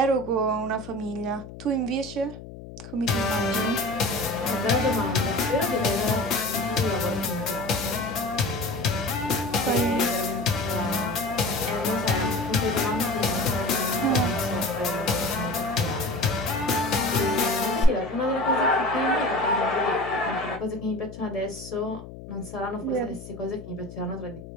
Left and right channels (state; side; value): noise; left; hum, 14 dB below the sound